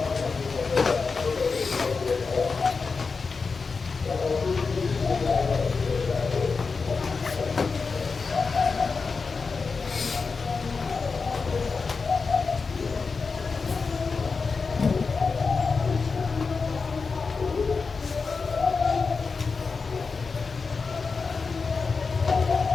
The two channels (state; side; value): quieter; right; 4.7 dB